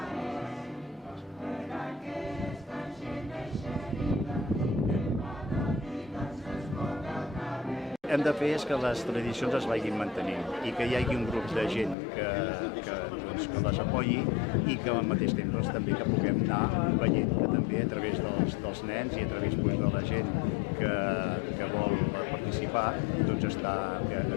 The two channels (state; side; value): drops out; right; at 12.0 s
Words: Hem de fer que les tradicions es vagin mantenint i que hi hagi un grup de gent que les apoyi i que al mateix temps també que puguem anar veient que també a través dels nens i a través de la gent que vol participar està